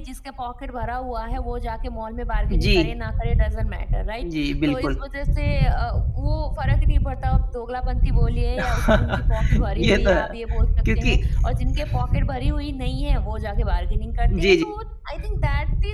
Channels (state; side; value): identical; both; correlation 1.00